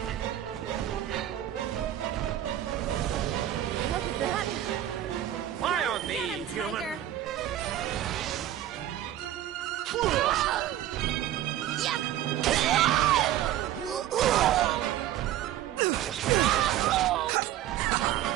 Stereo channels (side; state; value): left; quieter; 12.4 dB